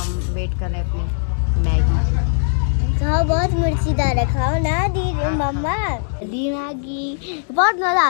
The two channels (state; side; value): silent; right; digital silence